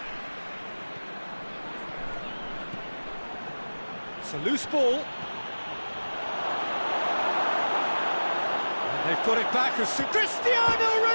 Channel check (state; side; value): inverted; both; correlation -1.00